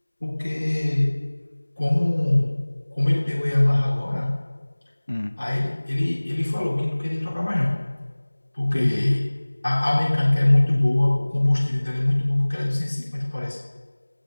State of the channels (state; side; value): inverted; both; correlation -1.00